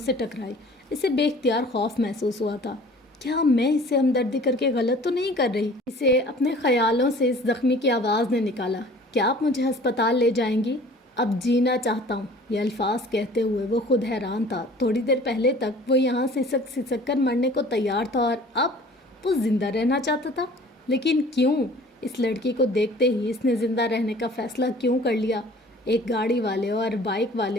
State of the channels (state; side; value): normal; both; correlation 0.48